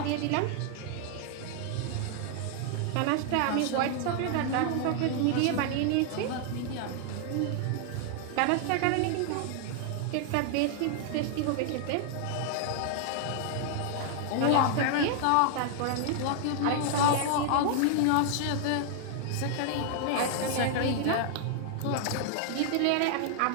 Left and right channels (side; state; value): both; different; correlation 0.00